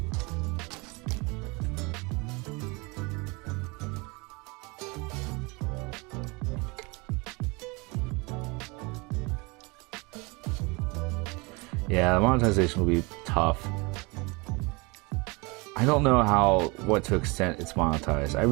Yeah, the monetization will be tough. I don't know what to extent it's monetized. I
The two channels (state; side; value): quieter; left; 27.2 dB